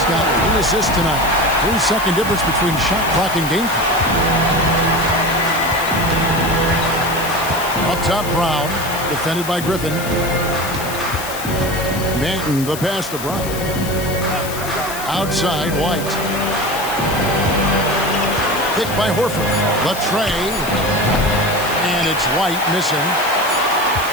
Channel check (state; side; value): noise; left; hiss, 10 dB below the sound